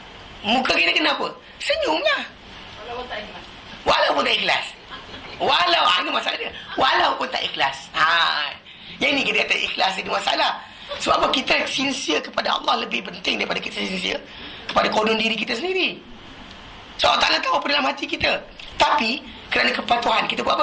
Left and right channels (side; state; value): both; identical; correlation 1.00